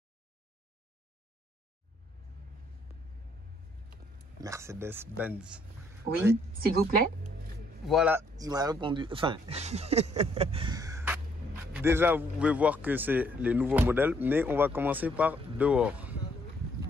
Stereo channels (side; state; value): both; normal; correlation 0.68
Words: Mercedes-Benz. Oui, s'il vous plaît. Voilà, il m'a répondu. Enfin, déjà, vous pouvez voir que c'est les nouveaux modèles, mais on va commencer par dehors.